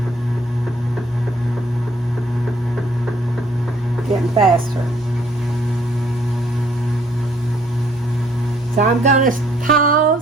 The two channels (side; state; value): both; normal; correlation 0.64